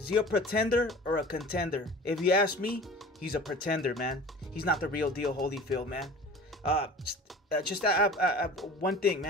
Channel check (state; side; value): normal; both; correlation 0.41